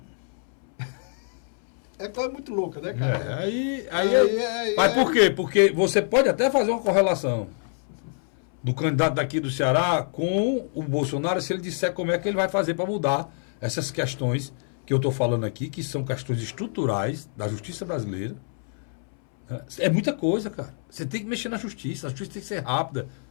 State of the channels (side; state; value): right; silent; 61 dB below the other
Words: É coisa muito louca, né, cara? Mas por quê? Porque você pode até fazer uma correlação do candidato daqui do Ceará com o Bolsonaro, se ele disser como é que ele vai fazer para mudar essas questões que eu estou falando aqui, que são questões estruturais da justiça brasileira. É muita coisa, cara. Você tem que mexer na justiça, a justiça tem que ser rápida.